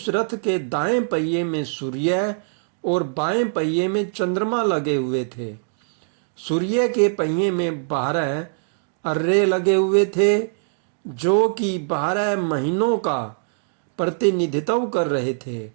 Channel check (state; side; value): silent; left; digital silence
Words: रथ के दाएं पहिए में सूर्य और बाएं पहिए में चंद्रमा लगे हुए थे। सूर्य के पहिए में 12 अर्रे लगे हुए थे, जो कि 12 महीनों का प्रतिनिधित्व कर रहे थे।